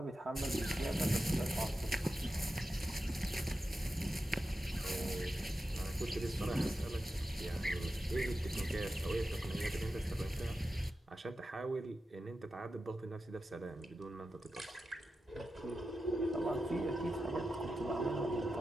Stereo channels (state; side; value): normal; both; correlation 0.91